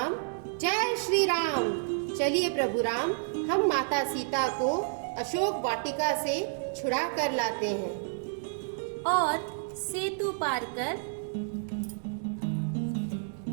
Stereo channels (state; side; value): silent; left; digital silence